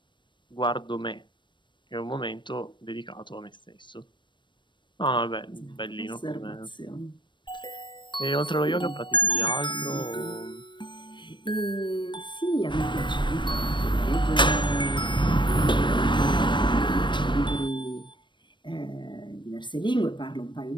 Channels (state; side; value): late; right; 0.22 ms